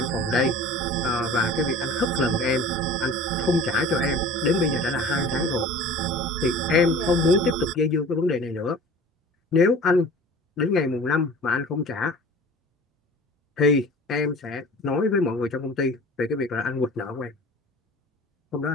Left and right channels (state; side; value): normal; both; correlation 0.42